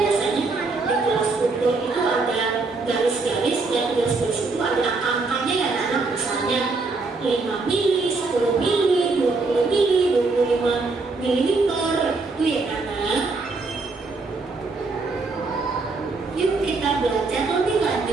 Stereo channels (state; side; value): quieter; left; 3.8 dB